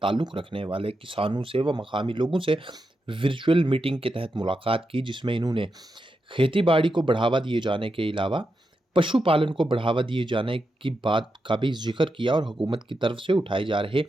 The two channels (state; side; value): normal; both; correlation 0.87